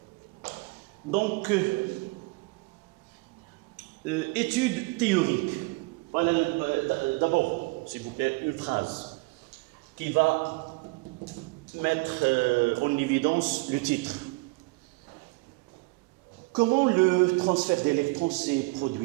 Donc, étude théorique. Voilà, d'abord, s'il vous plaît, une phrase qui va mettre en évidence le titre. Comment le transfert d'électrons s'est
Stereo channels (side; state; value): left; quieter; 26.4 dB